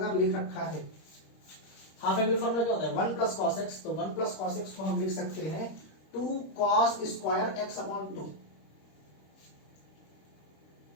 लिख रखा है, हाफ एंगल फॉर्मूला क्या होता है 1 प्लस कॉस एक्स, तो 1 प्लस कॉस एक्स को हम लिख सकते हैं 2 cos square x upon 2।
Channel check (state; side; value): late; right; 26 ms